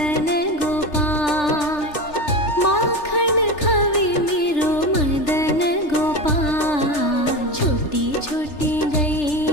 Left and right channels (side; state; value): right; late; 3.4 ms